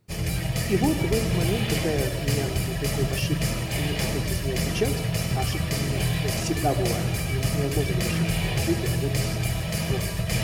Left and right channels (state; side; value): identical; both; correlation 1.00